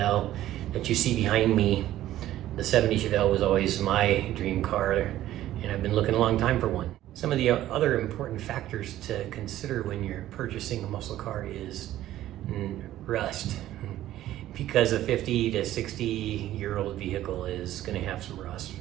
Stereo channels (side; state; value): left; quieter; 13.7 dB